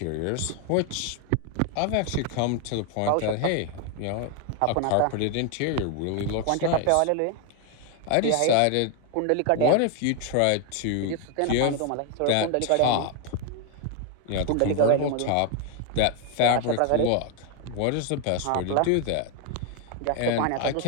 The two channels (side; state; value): both; different; correlation 0.01